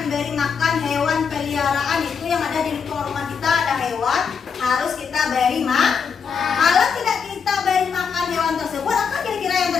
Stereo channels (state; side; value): quieter; right; 6.3 dB